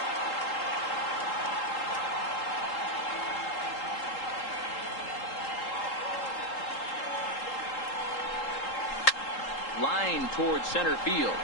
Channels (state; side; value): late; right; 3.8 ms